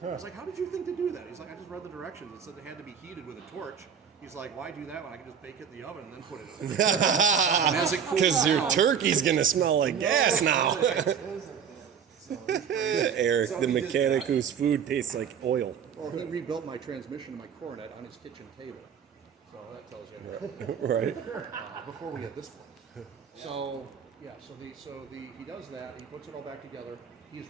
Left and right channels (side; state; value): left; quieter; 7.5 dB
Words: I was like, how did you think to do that? He's like, I just read the directions. It said it had to be heated with a torch. He's like, why do that when I can just bake it in the oven and then put it in? And as it cools Because down, your turkey's gonna smell like gas now. Eric, the mechanic whose food tastes like oil. Well, he rebuilt my transmission and my coronet on his kitchen table. So that tells you everything. Right. Before we had this one. So yeah, he does that. He puts it all back together. He's